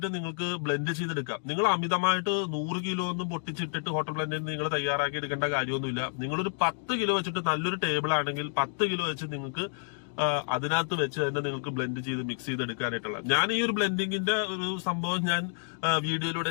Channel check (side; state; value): right; silent; 58 dB below the other